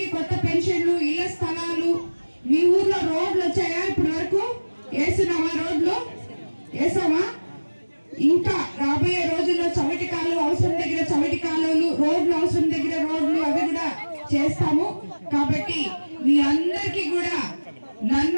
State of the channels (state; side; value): inverted; both; correlation -1.00